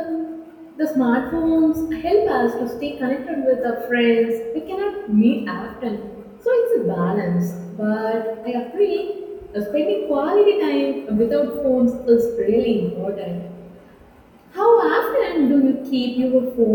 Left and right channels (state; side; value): identical; both; correlation 1.00